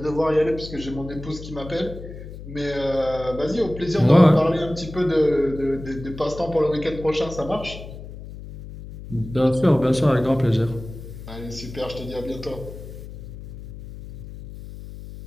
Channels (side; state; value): left; noise; hum, 13 dB below the sound